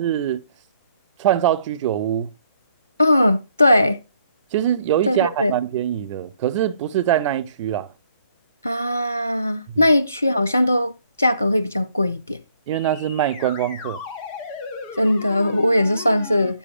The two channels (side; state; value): both; inverted; correlation -0.69